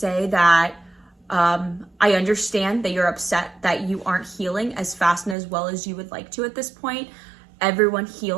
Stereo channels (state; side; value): drops out; left; at 5.4 s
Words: that I understand that you're upset that you aren't healing as fast and as well as you would like to at this point. Everyone